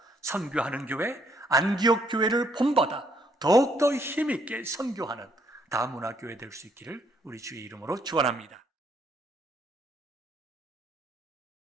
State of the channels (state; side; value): normal; both; correlation 0.69